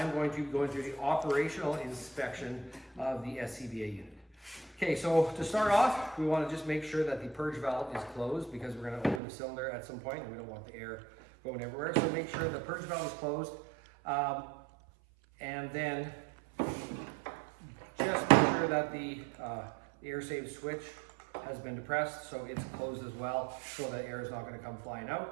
going to be going through the operational inspection of the SCBA unit. Okay, so to start off, we want to just make sure that the purge valve is closed because we're going to open the cylinder at some point and we don't want the air going everywhere. So make sure the purge valve is closed, and then just make sure that the air save switch has been depressed, so it's closed as well, so that air is not going to come flying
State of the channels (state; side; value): drops out; left; at 9.2 s